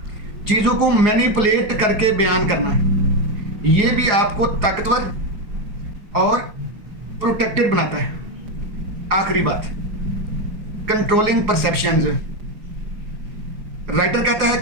चीज़ों को मैनिपुलेट करके बयान करना है, ये भी आपको ताकतवर और प्रोटेक्टेड बनाता है। आखिरी बात, कंट्रोलिंग परसेप्शंस। राइटर कहता है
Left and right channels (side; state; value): left; late; 4.9 ms